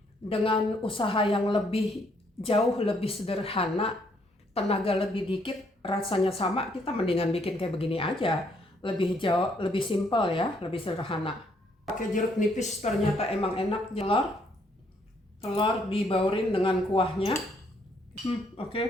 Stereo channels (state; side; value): normal; both; correlation 0.70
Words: dengan usaha yang jauh lebih sederhana, tenaga lebih dikit, rasanya sama, kita mendingan bikin kayak begini aja. Lebih simpel ya, lebih sederhana. Pakai jeruk nipis ternyata emang enak. Telur dibaurin dengan kuahnya.